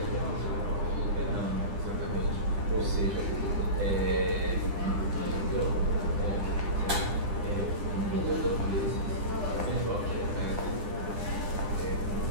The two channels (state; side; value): late; left; 9.9 ms